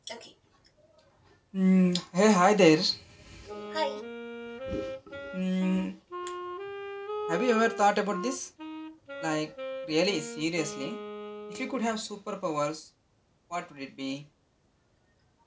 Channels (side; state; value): both; identical; correlation 1.00